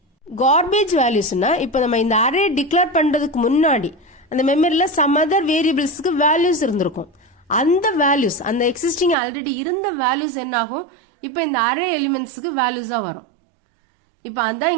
garbage valuesனா இப்போ நம்ம இந்த அரே டிக்ளேர் பண்றதுக்கு முன்னாடி அந்த மெமரியில some other variablesக்கு values இருந்திருக்கும். அந்த வேல்யூஸ் அந்த எக்ஸிஸ்டிங் ஆல்ரெடி இருந்த வேல்யூஸ் என்ன ஆகும் இப்போ இந்த அரே எலிமெண்ட்ஸ்க்கு வேல்யூஸா வரும். இப்போ அதான்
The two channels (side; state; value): left; drops out; at 9.2 s